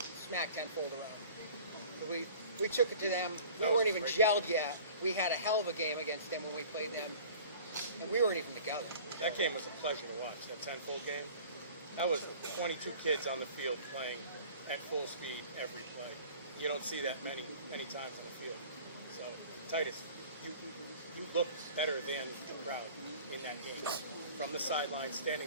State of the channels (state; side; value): inverted; both; correlation -0.45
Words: smacked tenfold around. So we took it to them. We weren't even gelled yet. We had a hell of a game against them when we played them, and we weren't even together. that game was a pleasure to watch. That 10-fold game. That was 22 kids on the field playing at full speed every play. You don't see that many times on the field. So Titus, you looked better than the crowd in that game. From the sideline,